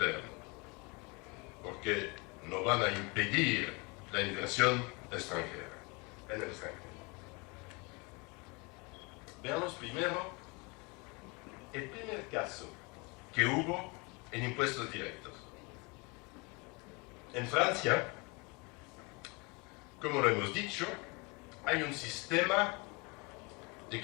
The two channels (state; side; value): quieter; right; 28.9 dB